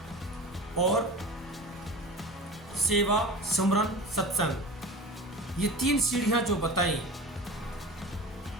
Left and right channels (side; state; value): both; normal; correlation 0.33